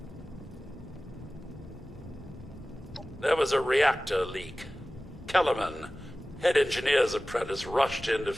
There was a reactor leak. Kellerman, head engineer's apprentice, rushed in to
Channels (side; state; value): both; normal; correlation 0.97